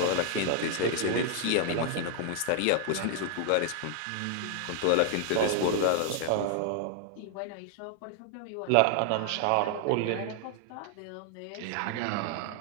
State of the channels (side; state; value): both; different; correlation 0.00